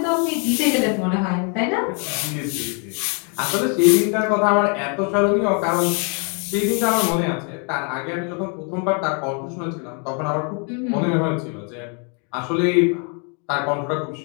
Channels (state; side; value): quieter; right; 37.8 dB